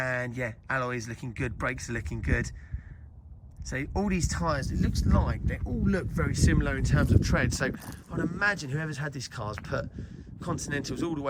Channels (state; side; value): identical; both; correlation 1.00